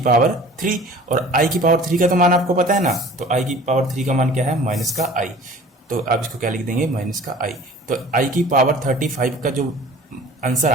पावर 3। और आई की पावर 3 का तो मान आपको पता है ना, तो आई की पावर 3 का मान क्या है, माइनस का आई। तो आप इसको क्या लिख देंगे, माइनस का आई। तो आई की पावर 35 का जो आंसर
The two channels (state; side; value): normal; both; correlation 0.46